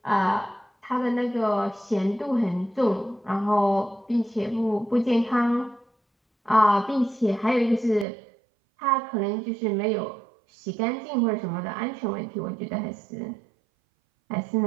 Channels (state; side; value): drops out; left; at 8.1 s